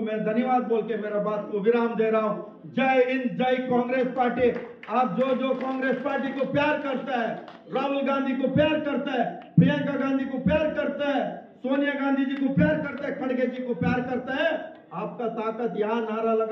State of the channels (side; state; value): both; identical; correlation 1.00